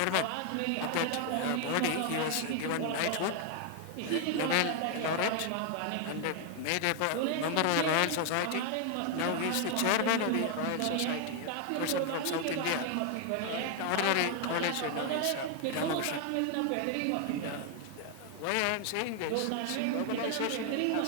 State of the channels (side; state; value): both; different; correlation 0.00